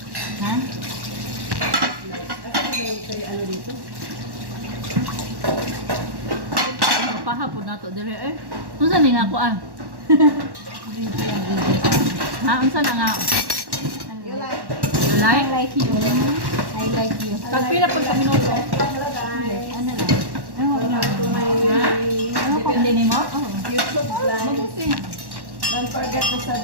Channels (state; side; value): late; left; 1.1 ms